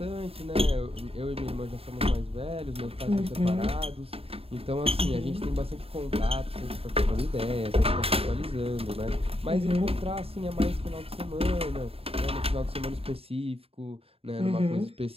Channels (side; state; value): left; late; 0.28 ms